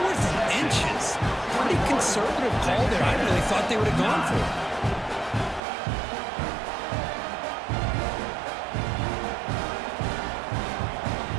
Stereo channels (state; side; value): drops out; left; at 5.6 s